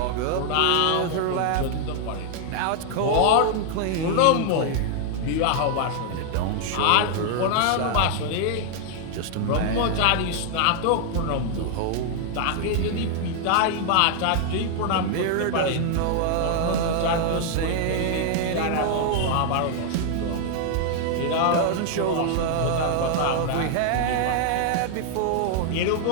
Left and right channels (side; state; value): both; different; correlation 0.00